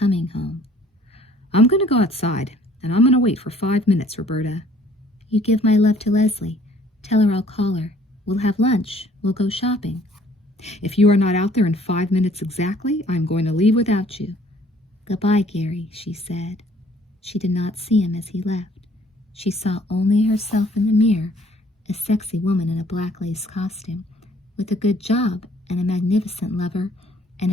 home. I'm going to go outside, and I'm going to wait for 5 minutes, Roberta. You give my love to Leslie. Tell her I'll call her. We'll have lunch. We'll go shopping. If you are not out there in 5 minutes exactly, I'm going to leave without you. Goodbye, Gary, she said. She did not see him as he left. She saw only herself in the mirror, a sexy woman in a black lace costume, with a good job and a magnificent lover and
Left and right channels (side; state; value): both; normal; correlation 0.58